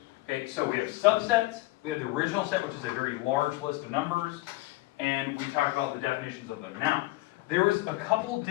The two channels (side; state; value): right; quieter; 19.7 dB